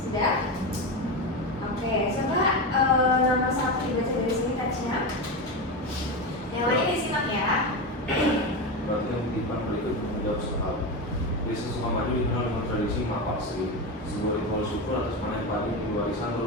Oke, coba nomor 1 dibaca dari sini teksnya. Yang lain disimak ya. Perhatikan kutipan berikut menjawab soal. Desa Sukamaju dikenal dengan tradisi mapak sri, sebuah ritual syukur atas panen padi yang diwariskan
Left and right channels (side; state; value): both; normal; correlation 0.17